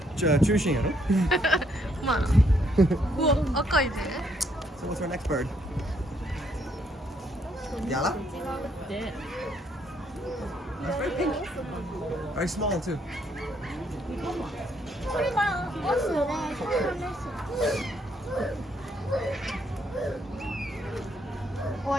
中心やろ。まあな。うわ、赤いね。 So what's our next bird? Yala? That's very pink. Very small too. これがオスで、これがメス。終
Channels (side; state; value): both; normal; correlation 0.71